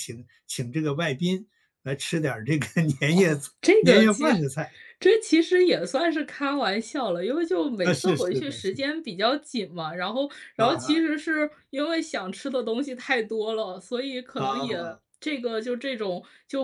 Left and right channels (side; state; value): both; identical; correlation 1.00